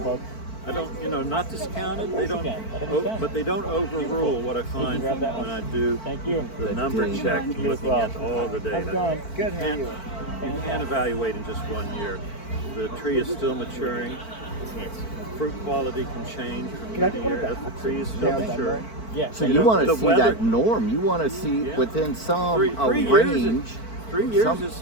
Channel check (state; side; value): late; right; 4.5 ms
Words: Folks. I don't, you know, not discounted. They don't, can. Let 'em be done. but they don't overrule what I find grab that when one. I do Thank you. the The number data. check, You as looking well. at all the data. How's it going? Good. You can't evaluate in just 1 year. The tree is still maturing. Fruit quality can change from year to year as the tree is still maturing. Yeah. So You you know, want to the see weather- that norm. You want to see Yeah. within some Three years is- range. 3 years some- is